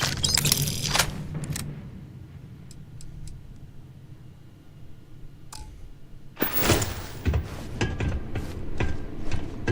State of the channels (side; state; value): both; identical; correlation 1.00